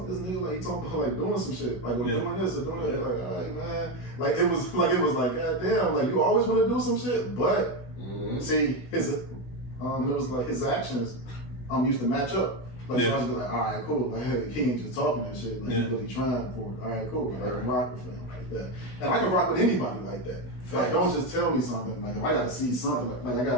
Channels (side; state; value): right; late; 16 ms